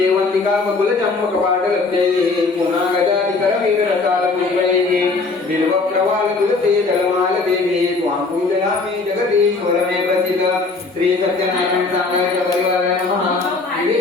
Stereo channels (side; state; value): right; quieter; 3.9 dB